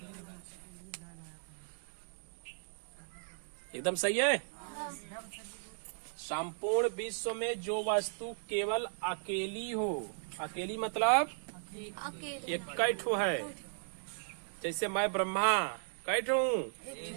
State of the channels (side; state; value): left; silent; digital silence